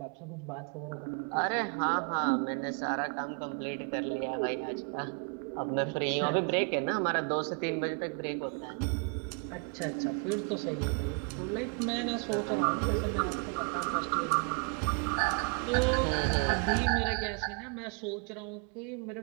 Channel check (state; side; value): quieter; left; 37.0 dB